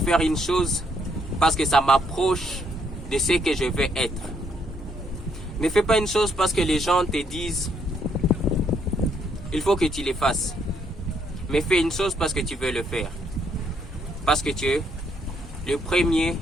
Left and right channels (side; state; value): both; normal; correlation 0.72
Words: une chose parce que ça m'approche de ce que je veux être. Ne fais pas une chose parce que les gens te disent il faut que tu le fasses. Mais fais une chose parce que tu veux le faire. Parce que tu es le premier